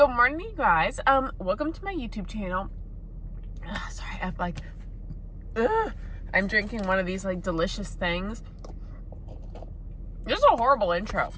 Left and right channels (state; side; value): identical; both; correlation 1.00